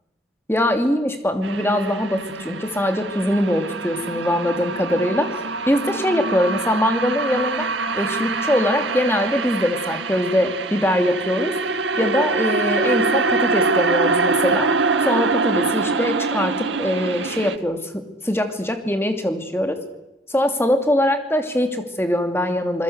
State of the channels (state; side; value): normal; both; correlation 0.54